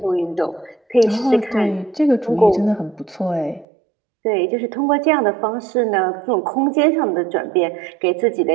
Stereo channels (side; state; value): left; drops out; at 3.7 s